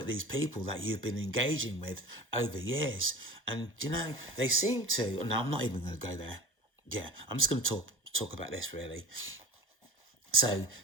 these people that you've been engaging with over years. And, they seem to, and I'm not even going to go there. Yeah, I'm just going to talk about this, really. So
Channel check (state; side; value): normal; both; correlation 0.35